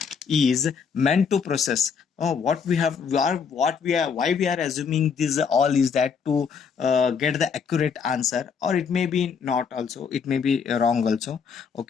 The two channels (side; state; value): right; quieter; 6.2 dB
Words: is meant to process what we have, why we are assuming this all is that to get the accurate answer, or it may be not also, it may be wrong also.